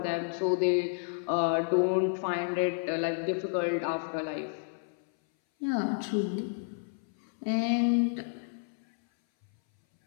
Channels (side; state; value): right; silent; 57 dB below the other